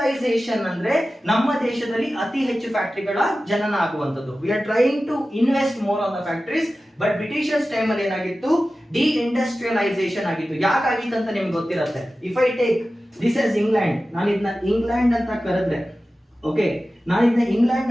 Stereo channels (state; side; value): normal; both; correlation 0.95